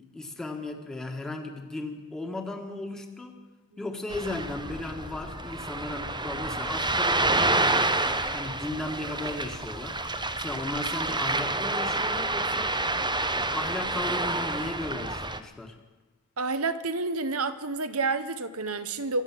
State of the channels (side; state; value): both; normal; correlation -0.05